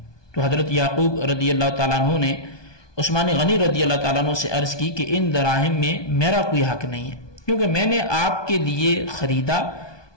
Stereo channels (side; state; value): right; late; 1.2 ms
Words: تو حضرت یعقوب رضی اللہ تعالیٰ عنہ نے عثمان غنی رضی اللہ تعالیٰ عنہ سے عرض کی کہ ان دراہم میں میرا کوئی حق نہیں ہے، کیونکہ میں نے آپ کے لیے خریدا